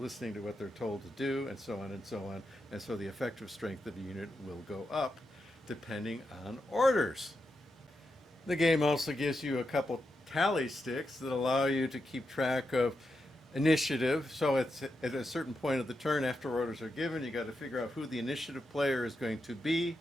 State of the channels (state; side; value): normal; both; correlation 0.86